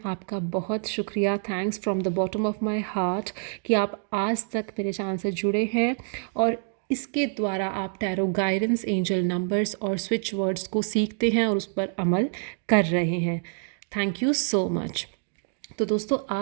आपका बहुत शुक्रिया। Thanks from the bottom of my heart कि आप आज तक मेरे चैनल से जुड़े हैं और इसके द्वारा आप टैरो गाइडेंस, एंजल नंबर्स और स्विच वर्ड्स को सीखते हैं और उस पर अमल कर रहे हैं। Thank you so much. तो दोस्तों,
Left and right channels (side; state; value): left; silent; 59 dB below the other